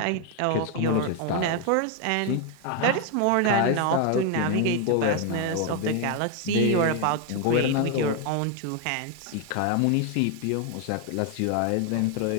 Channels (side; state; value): both; different; correlation 0.01